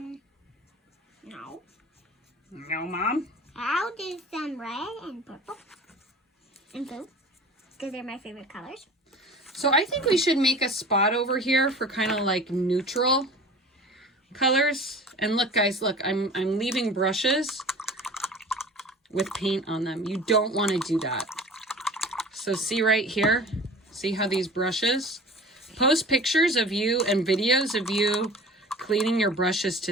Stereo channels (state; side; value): normal; both; correlation 0.40